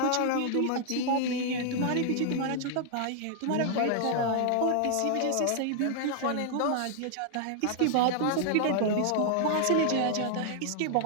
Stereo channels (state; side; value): different; both; correlation 0.00